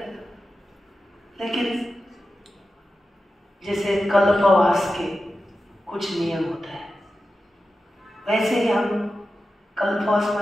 लेकिन जैसे कल्पवास के कुछ नियम होता है, वैसे ही हम कल्पवास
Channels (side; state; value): both; normal; correlation 0.92